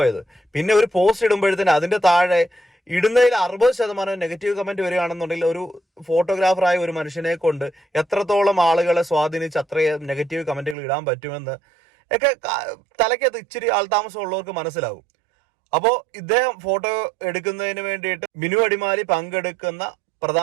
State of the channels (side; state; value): left; drops out; at 10.8 s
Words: പിന്നെ ഒരു പോസ്റ്റ് ഇടുമ്പോഴത്തേന് അതിന്റെ താഴെ ഇടുന്നതിൽ 60% നെഗറ്റീവ് കമന്റ് വരികയാണെന്നുണ്ടെങ്കിൽ ഒരു ഫോട്ടോഗ്രാഫറായ ഒരു മനുഷ്യനെ കൊണ്ട് എത്രത്തോളം ആളുകളെ സ്വാധീനിച്ച് അത്രയും നെഗറ്റീവ് കമന്റുകൾ ഇടാൻ പറ്റുമെന്ന് ഒക്കെ തലയ്ക്കകത്ത് ഇച്ചിരി ആൾതാമസം ഉള്ളവർക്ക് മനസ്സിലാകും. അപ്പോൾ ഇദ്ദേഹം ഫോട്ടോ എടുക്കുന്നതിന് വേണ്ടിയിട്ട് ബിനു അടിമാലി പങ്കെടുക്കുന്ന